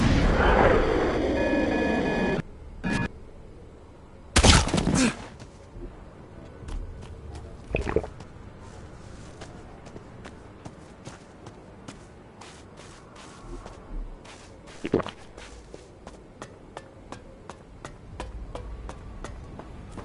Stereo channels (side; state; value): both; identical; correlation 1.00